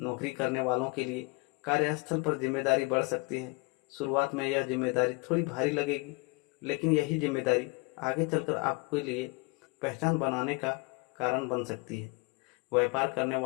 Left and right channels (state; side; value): quieter; right; 27.8 dB